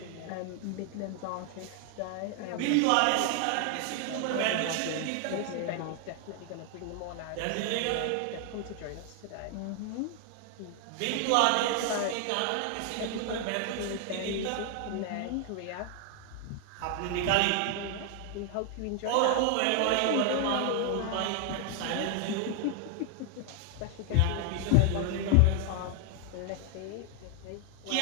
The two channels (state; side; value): different; both; correlation 0.00